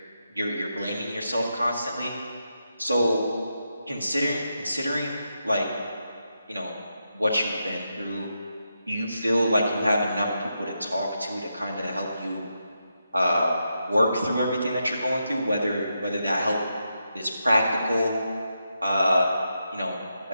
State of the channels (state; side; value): inverted; both; correlation -0.85